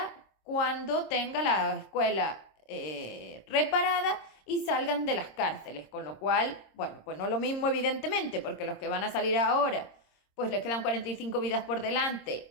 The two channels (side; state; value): right; late; 26 ms